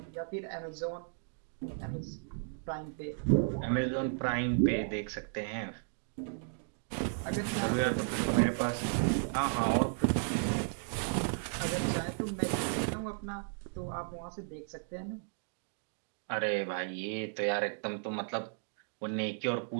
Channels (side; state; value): left; silent; digital silence